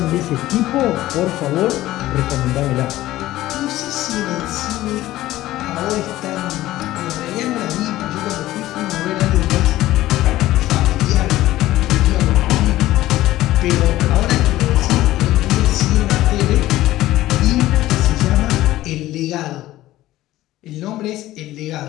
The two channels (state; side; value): quieter; right; 15.6 dB